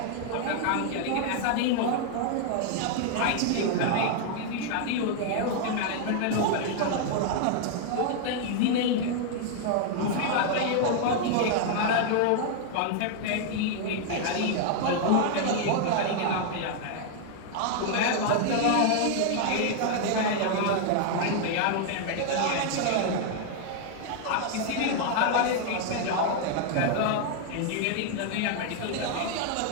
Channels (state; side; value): different; both; correlation 0.00